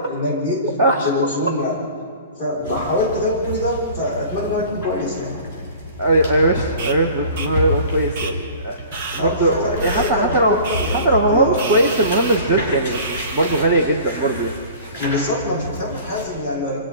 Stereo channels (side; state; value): both; inverted; correlation -0.44